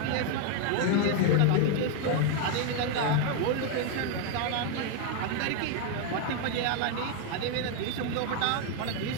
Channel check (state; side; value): different; both; correlation 0.01